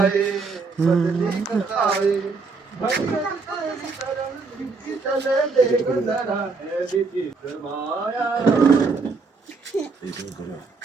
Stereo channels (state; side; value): quieter; left; 4.3 dB